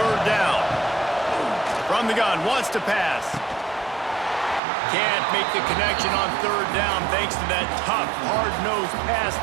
down. From the gun, wants to pass. Can't make the connection on 3rd down thanks to that tough, hard-nosed pass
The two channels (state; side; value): drops out; left; at 4.6 s